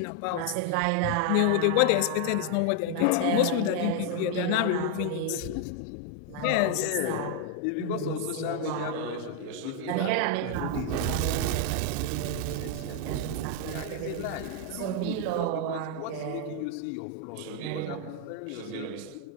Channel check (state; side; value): different; both; correlation 0.00